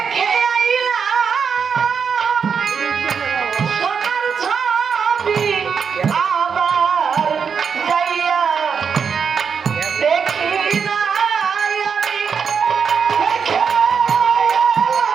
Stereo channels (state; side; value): quieter; left; 6.4 dB